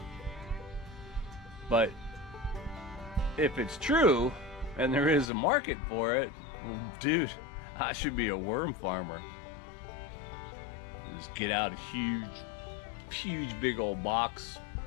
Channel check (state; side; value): drops out; right; at 5.3 s